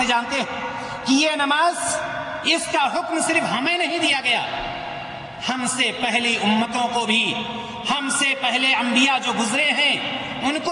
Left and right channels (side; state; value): both; identical; correlation 1.00